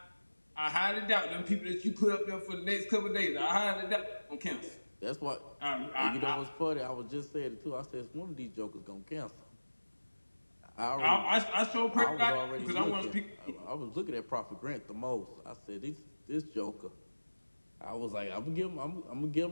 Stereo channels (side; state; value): both; inverted; correlation -1.00